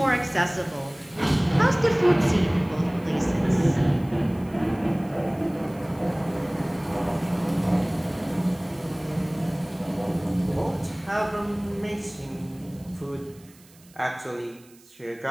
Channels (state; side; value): noise; right; hiss, 27 dB below the sound